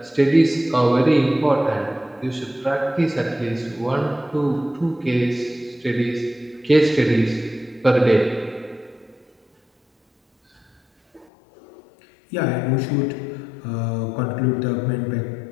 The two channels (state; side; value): drops out; right; at 11.3 s